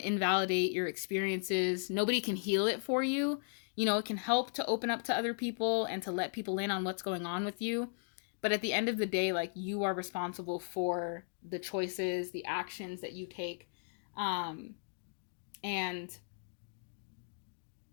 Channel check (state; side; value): silent; right; digital silence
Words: your experiences. Nobody can heal it for you. You know, it can help to open up to other people and to let people in on what's going on with you. But at the end of the day, like you are responsible for the choices, the actions that you take. And